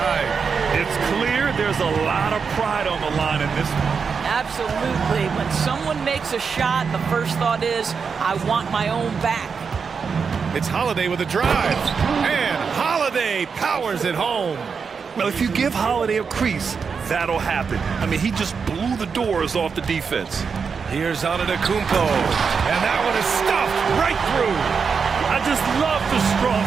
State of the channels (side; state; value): left; quieter; 5.8 dB